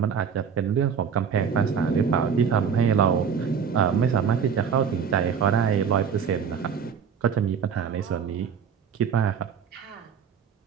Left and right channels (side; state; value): left; quieter; 7.0 dB